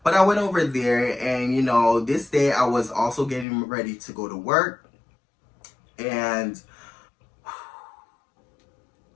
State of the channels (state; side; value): drops out; right; at 3.5 s